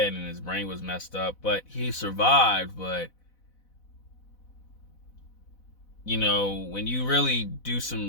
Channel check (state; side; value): late; right; 4.0 ms